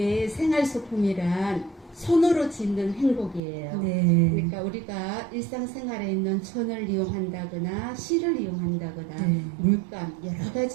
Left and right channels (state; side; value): drops out; left; at 3.4 s